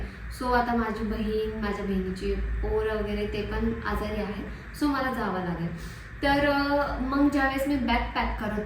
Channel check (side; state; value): both; identical; correlation 1.00